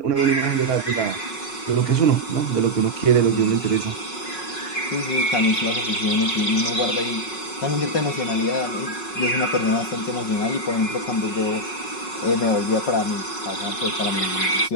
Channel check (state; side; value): late; right; 5.4 ms